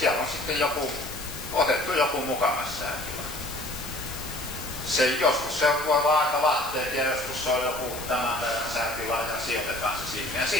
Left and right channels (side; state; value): left; noise; hiss, 10 dB below the sound